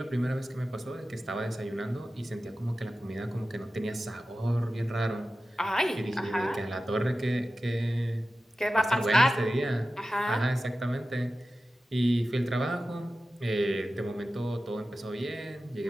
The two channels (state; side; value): normal; both; correlation 0.94